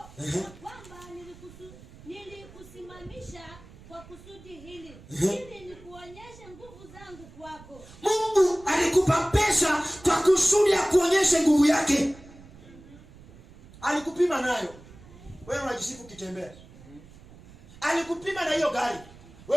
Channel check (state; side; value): noise; right; rumble, 21 dB below the sound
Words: kwamba nilikusimamisha kwa kusudi hili, ili nikuonyeshe nguvu zangu kwako. Mungu alikupa pesa kwa kusudi ya kuonyesha nguvu yake. Alikupima nayo, wewe unajisifu kitembea. Alikupima na hiyo gari,